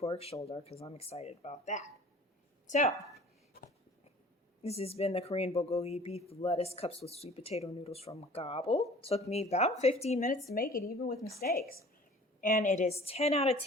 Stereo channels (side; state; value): both; normal; correlation 0.47